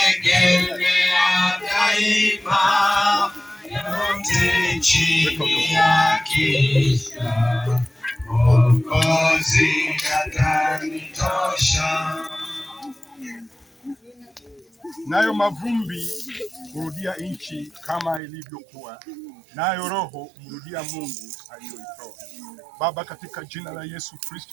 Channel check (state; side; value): drops out; left; at 18.2 s